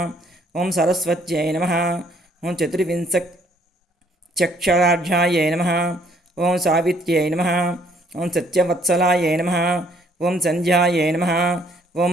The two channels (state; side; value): normal; both; correlation 0.64